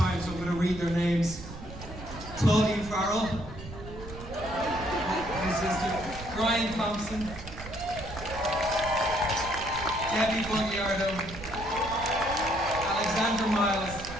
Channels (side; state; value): right; noise; rumble, 12 dB below the sound